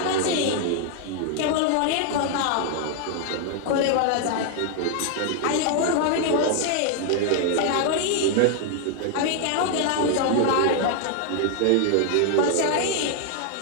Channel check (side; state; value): both; different; correlation 0.00